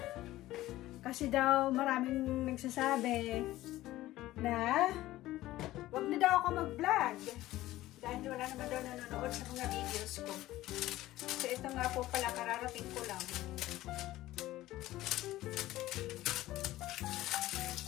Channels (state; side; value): quieter; right; 16.1 dB